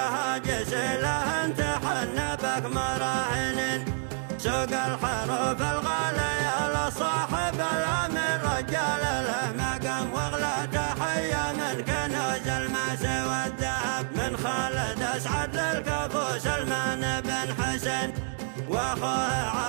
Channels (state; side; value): silent; left; digital silence